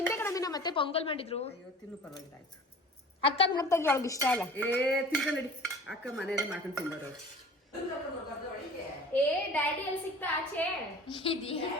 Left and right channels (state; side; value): normal; both; correlation 0.43